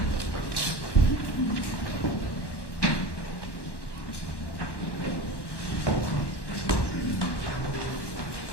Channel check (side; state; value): right; late; 1.1 ms